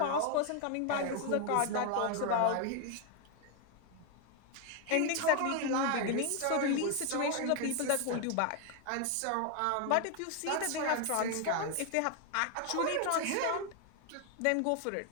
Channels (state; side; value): different; both; correlation 0.01